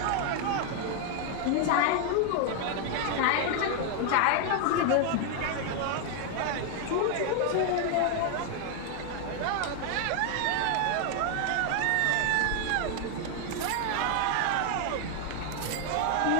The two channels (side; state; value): both; different; correlation 0.00